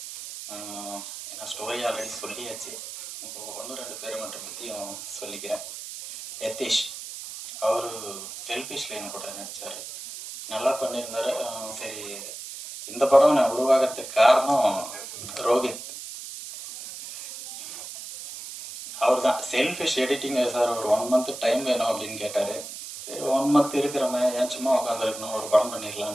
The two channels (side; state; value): right; noise; hiss, 10 dB below the sound